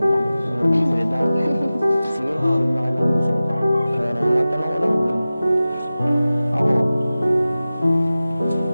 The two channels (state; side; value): inverted; both; correlation -0.96